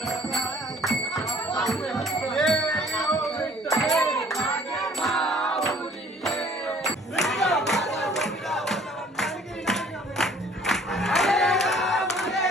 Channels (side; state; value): both; normal; correlation 0.55